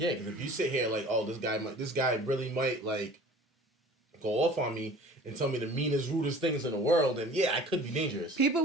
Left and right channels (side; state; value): both; normal; correlation 0.46